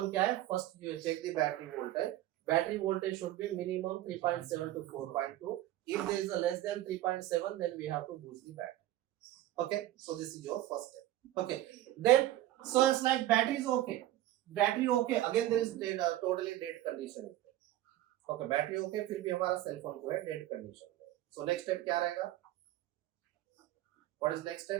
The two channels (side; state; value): left; quieter; 14.6 dB